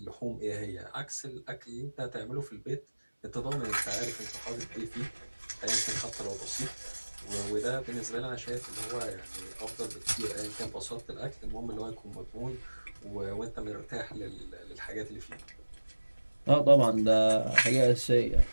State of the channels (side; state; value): both; inverted; correlation -1.00